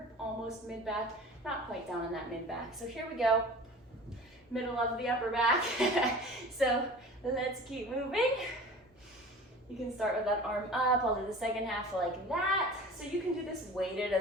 almost mid-back, not quite down in that mid-back. So here we go, middle of the upper back. So let's keep moving. You can start with that arm up. I'll do the second half like that. So you can do this weighted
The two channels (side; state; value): both; normal; correlation 0.40